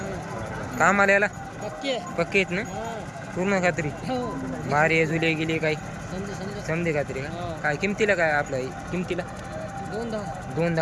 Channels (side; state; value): both; identical; correlation 1.00